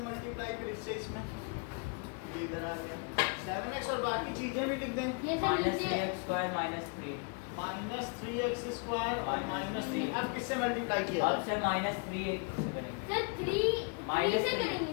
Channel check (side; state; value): right; quieter; 33.9 dB